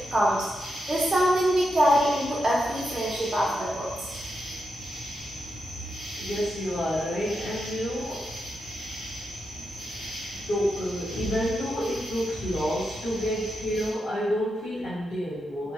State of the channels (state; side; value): normal; both; correlation 0.85